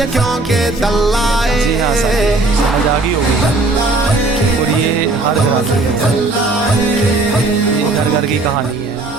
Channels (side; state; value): left; quieter; 3.2 dB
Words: کیونکہ دلائے. جی ہاں سر، سمجھ آ گئی ہوگی. اور یہ ہر گھر کی کہانی ہے.